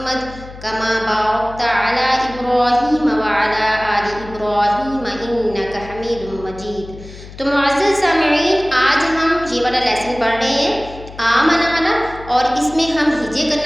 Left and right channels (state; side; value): noise; left; hum, 16 dB below the sound